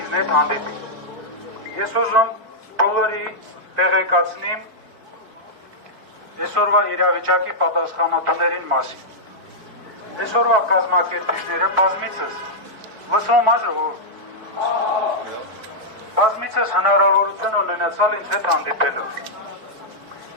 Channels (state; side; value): late; left; 4.6 ms